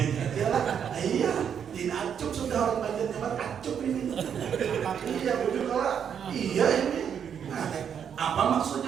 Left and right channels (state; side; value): quieter; left; 8.1 dB